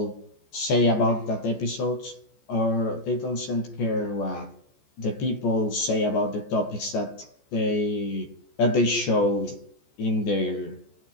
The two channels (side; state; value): right; late; 14 ms